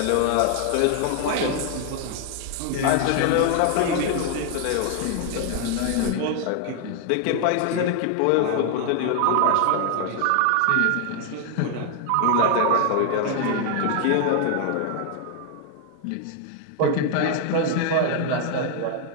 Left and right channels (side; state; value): both; different; correlation 0.00